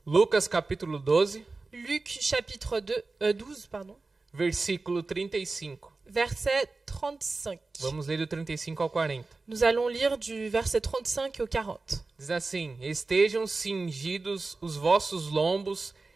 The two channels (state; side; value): quieter; left; 3.7 dB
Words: Lucas capítulo 12, Luc chapitre 12, versículo 35. verset 35. Vamos ler do 35 ao 40. Nous allons lire du verset 35 au 40. Diz assim: Estejam cingidos os vossos lombos